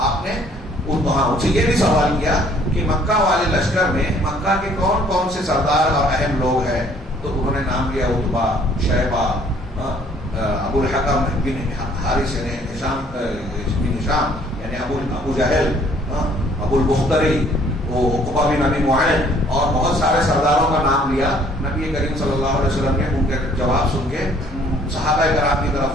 نے ان سے یہ بھی سوال کیا کہ مکہ والے لشکر میں مکہ کے کون کون سے سردار اور اہم لوگ ہیں؟ تو انہوں نے نام لیا عتبہ, شیبہ, ابو الحکم بن حارث نے, ہشام بن ہشام یعنی ابو جہل, ابو البختری, عقبہ بن ابی معین, اور بہت سارے سرداروں کا نام لیا. نبی کریم صلی اللہ علیہ وسلم نے ان کے جواب سن کے صحابہ کرام کی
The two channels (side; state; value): both; normal; correlation 0.60